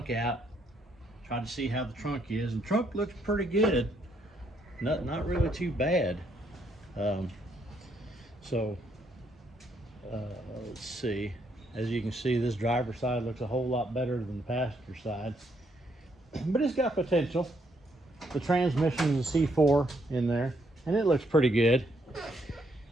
out, tried to see how the trunk is, and the trunk looks pretty good. Not really too bad. Let's see. As you can see, this driver's side looks a whole lot better than the passenger side, but it's got potential. The transmission is a C4 in there, and it looks pretty good.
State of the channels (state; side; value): normal; both; correlation 0.73